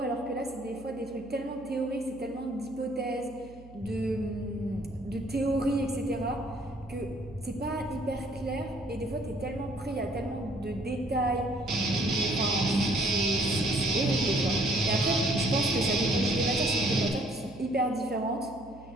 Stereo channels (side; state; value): right; noise; hum, 20 dB below the sound